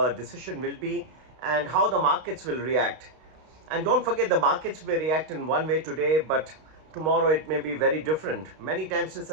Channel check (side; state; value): left; late; 32 ms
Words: decision will be and how the markets will react. And don't forget, the markets may react in one way today, but tomorrow it may be very different. Many times this